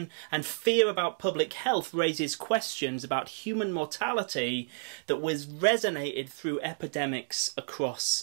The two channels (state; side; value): silent; left; digital silence